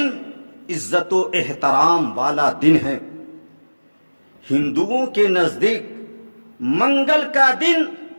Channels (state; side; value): inverted; both; correlation -1.00